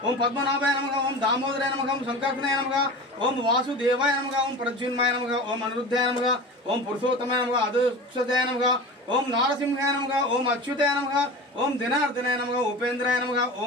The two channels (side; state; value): both; normal; correlation 0.32